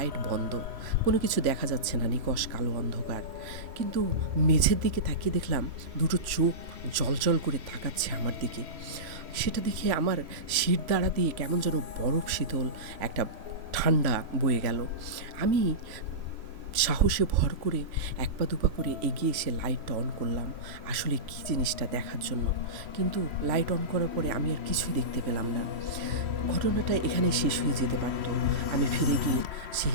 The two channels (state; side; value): late; left; 3.0 ms